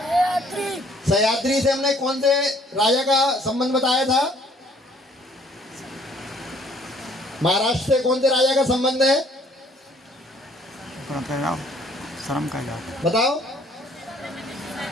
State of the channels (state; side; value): normal; both; correlation 0.60